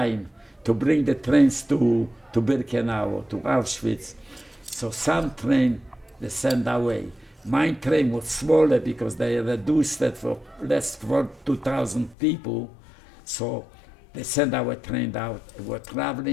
to bring the trains to Birkenau, to Auschwitz. So some train they sent away. My train was smaller because they reduced it for less for 2,000 people. So they sent our train out. We were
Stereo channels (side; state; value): right; drops out; at 12.2 s